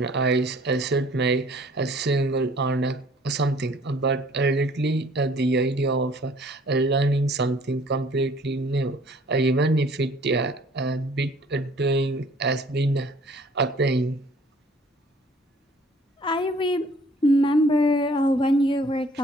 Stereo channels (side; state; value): both; normal; correlation 0.55